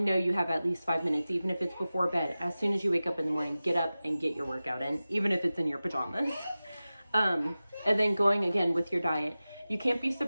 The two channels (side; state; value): both; inverted; correlation -0.96